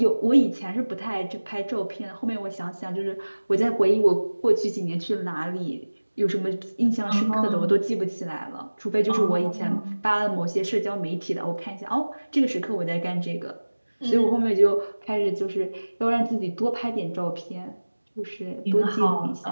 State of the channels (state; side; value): inverted; both; correlation -1.00